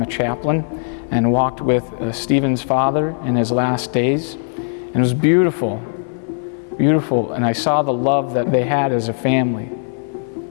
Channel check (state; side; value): silent; right; 60 dB below the other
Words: a chaplain, and walked with Stephen's father in his last days. And it was beautiful, beautiful. And I saw the love that they had as a family,